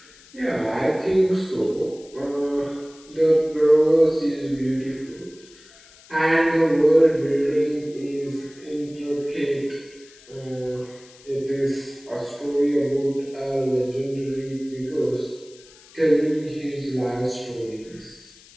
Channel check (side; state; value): left; noise; hiss, 24 dB below the sound